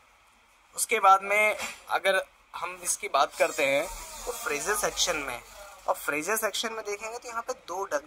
उसके बाद में अगर हम इसकी बात करते हैं तो फ्रीजर सेक्शन में, और फ्रीजर सेक्शन में देखेंगे तो यहाँ पे 2 डक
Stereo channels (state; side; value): identical; both; correlation 1.00